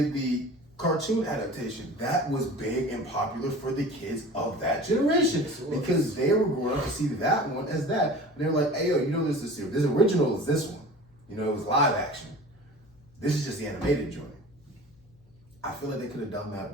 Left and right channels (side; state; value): left; noise; hum, 29 dB below the sound